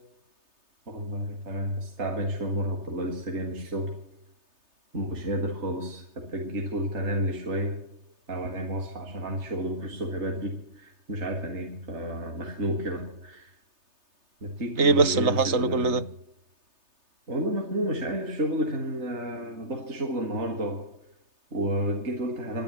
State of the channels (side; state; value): left; late; 3.3 ms